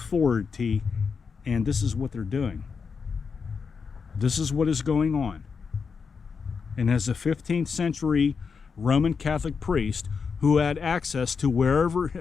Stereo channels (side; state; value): right; quieter; 5.6 dB